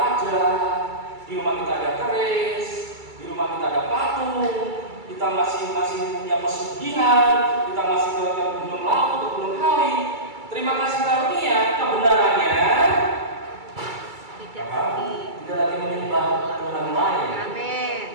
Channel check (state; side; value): late; left; 2.3 ms